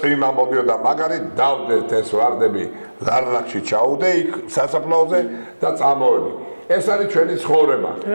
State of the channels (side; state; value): both; inverted; correlation -1.00